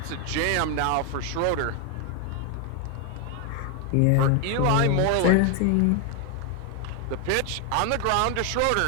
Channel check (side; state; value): both; different; correlation 0.01